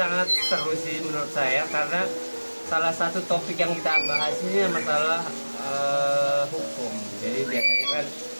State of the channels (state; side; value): inverted; both; correlation -1.00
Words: seru sih menurut saya, karena salah satu topik yang kita bahas ini masalah hukum. Jadi biasanya kan